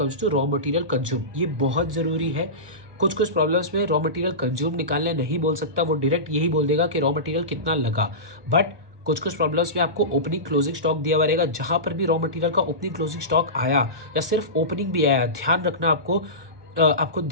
to raw material consume. ये बहुत जरूरी है, कुछ प्रॉब्लम्स में रॉ मटेरियल कंज्यूम निकालने नहीं बोल सकता, वो डायरेक्ट यही बोल देगा कि रॉ मटेरियल कितना लगा। बट कुछ प्रॉब्लम्स में आपको ओपनिंग क्लोजिंग स्टॉक दिया हुआ रहेगा, जहां पर भी रॉ मटेरियल का ओपनिंग क्लोजिंग स्टॉक आया या सिर्फ ओपनिंग भी आया, ध्यान रखना आपको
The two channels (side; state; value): left; late; 1.2 ms